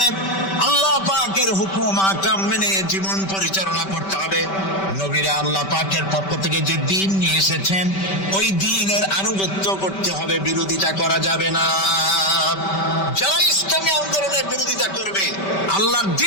আল্লাহ পাকের হুকুম আহকাম মেনে জীবন পরিচালনা করতে হবে। নবীরা আল্লাহ পাকের পক্ষ থেকে যে দ্বীন নিয়ে এসেছেন, ওই দ্বীনের আনুগত্য করতে হবে, বিরোধিতা করা যাবে না। যারা ইসলামী আন্দোলনের বিরোধিতা করবে, আল্লাহর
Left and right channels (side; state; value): right; late; 5.2 ms